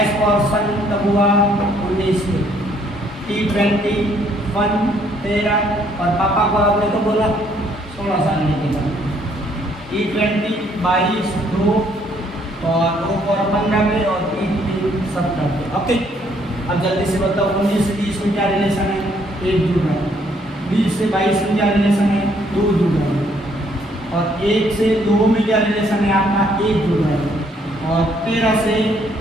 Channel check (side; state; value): both; normal; correlation 0.66